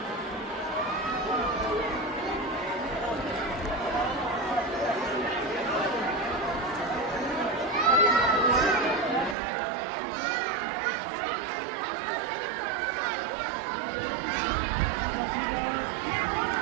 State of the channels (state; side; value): drops out; left; at 9.3 s